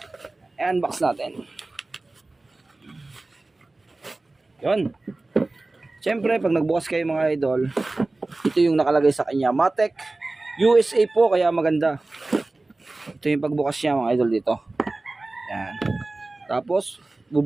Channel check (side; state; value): left; quieter; 3.1 dB